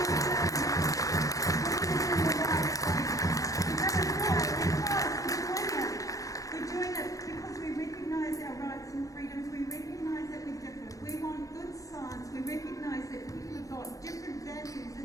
we're doing it because we recognise our rights and freedoms, we recognise that we're different, we want good science, we recognise that people have got different values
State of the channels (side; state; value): right; late; 0.16 ms